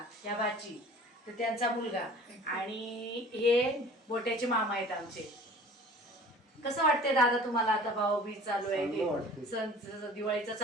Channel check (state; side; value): normal; both; correlation 0.46